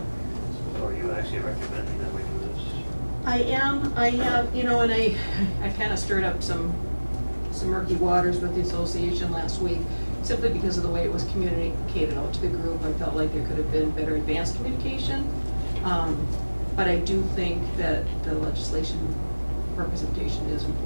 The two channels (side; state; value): both; inverted; correlation -1.00